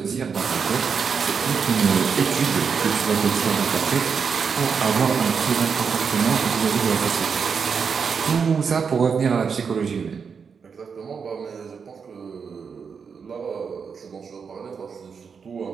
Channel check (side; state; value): left; quieter; 6.1 dB